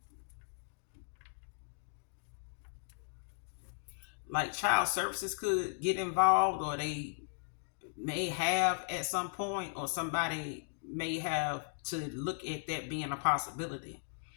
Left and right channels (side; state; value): right; silent; digital silence